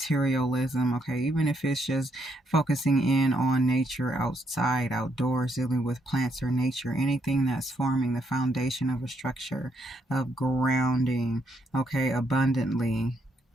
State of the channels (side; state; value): both; normal; correlation 0.75